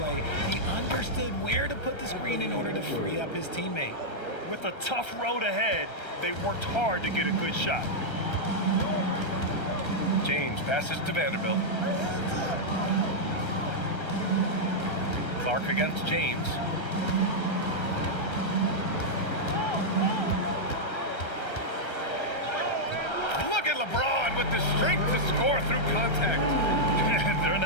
He understood where to put the screen in order to free up his teammate. With a tough road ahead, they worked hard to get a good shot. James passes to Vanderbilt. Clark against James. Look at LeBron with the strength to score through contact. They're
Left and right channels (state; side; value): late; right; 1.3 ms